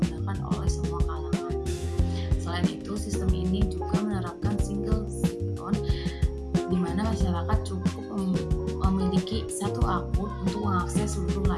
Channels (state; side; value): identical; both; correlation 1.00